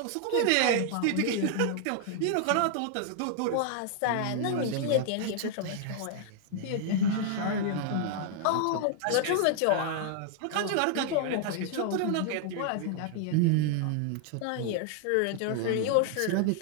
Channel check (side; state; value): both; different; correlation 0.00